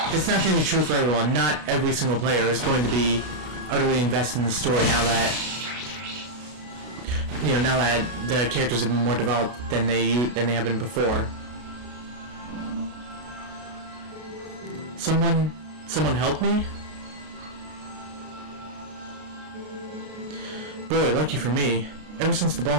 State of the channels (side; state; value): left; late; 33 ms